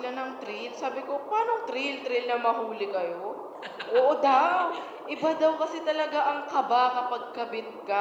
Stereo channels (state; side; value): identical; both; correlation 1.00